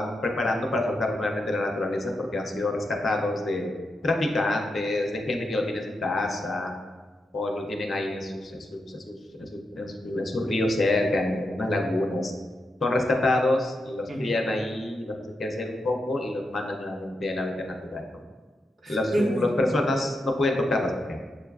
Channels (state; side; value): normal; both; correlation 0.85